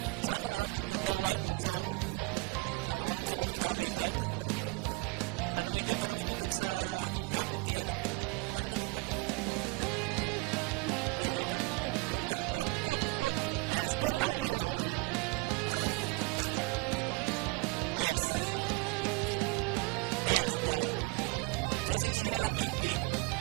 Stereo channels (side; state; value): left; quieter; 25.1 dB